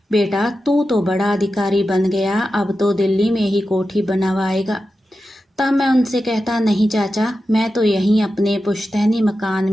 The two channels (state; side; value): normal; both; correlation 0.91